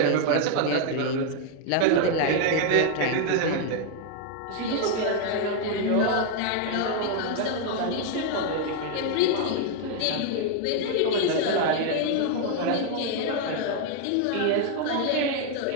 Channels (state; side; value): different; both; correlation 0.00